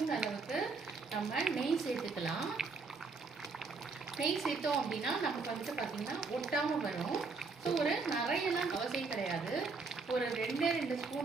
அளவுக்கு நம்ம நெய் சேர்த்துக்கலாம். நெய் சேர்த்தோம் அப்படின்னா நமக்கு வந்துட்டு பார்த்தீங்கன்னா ஒட்டாமல் வரும். ஸோ ஒரு நிறையெல்லாம் அவசியம் கிடையாது, ஒரு 2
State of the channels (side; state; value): left; quieter; 4.3 dB